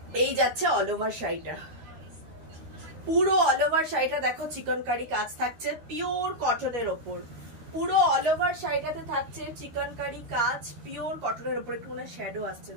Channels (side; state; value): left; late; 13 ms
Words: এই যাচ্ছে অল ওভার শাড়িটা, পুরো অল ওভার শাড়িটা দেখো চিকনকারি কাজ থাকছে পিওর কটনের ওপর। পুরো অল ওভার শাড়িটাতে থাকছে চিকনকারি কাজ পিওর কটনের উপর। একটু মনে শ্যাডো আসছে,